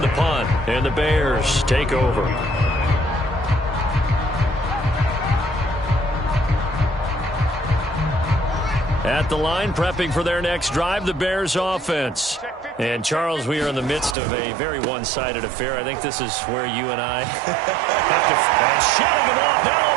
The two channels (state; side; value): drops out; left; at 14.2 s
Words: the punt, and the Bears take over. At the line, prepping for their next drive, the Bears offense. And, Charles, we are in the midst of a very one-sided affair. I think this is where you and I have to... And shutting him off, now